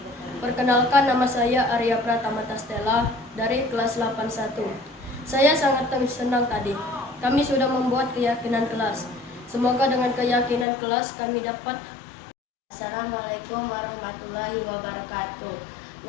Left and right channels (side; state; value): right; drops out; at 10.7 s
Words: Perkenalkan, nama saya Arya Pratama Tastela dari kelas 81. Saya sangat senang tadi. Kami sudah membuat keyakinan kelas. Semoga dengan keyakinan kelas kami dapat. Assalamualaikum warahmatullahi wabarakatuh.